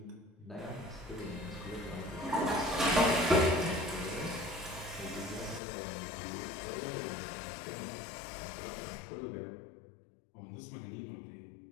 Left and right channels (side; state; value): right; drops out; at 5.6 s